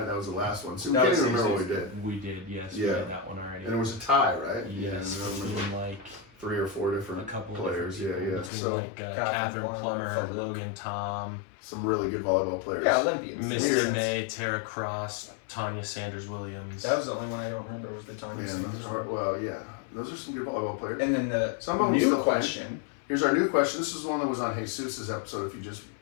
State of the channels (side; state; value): right; drops out; at 8.5 s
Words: That was the last one. So we That can't was even remember what we easy. did. We did, yes. We Yeah. did that one already. And it was a tie, right? Yes, Yeah, I remember. between like 3 or 4 A different couple players. different people Yeah. between So like Catherine Plummer, Logan Tom, some really good volleyball players. Yeah, Olympians. Misty May, Tara Cross, Tanya Sanders Williams. That was the only one I don't remember was the Tanya Man, Sanders. those are those are some good volleyball players. And then the Some of them new still play. question Here's our new question. This is one that was on Jesus's episode. If you just